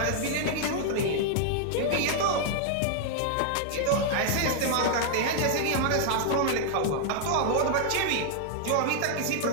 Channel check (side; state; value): both; different; correlation 0.00